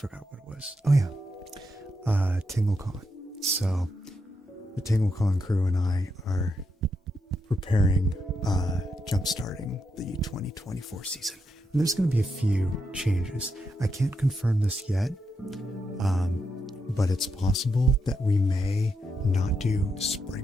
what it was. Oh yeah, TingleCon. So the TingleCon crew and I are preparing, jump-starting the 2024 season. And there's going to be a few changes. I can't confirm this yet, but it's possible that we may not do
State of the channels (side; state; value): both; normal; correlation 0.82